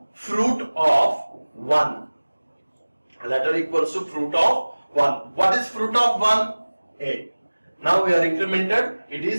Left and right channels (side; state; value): both; inverted; correlation -1.00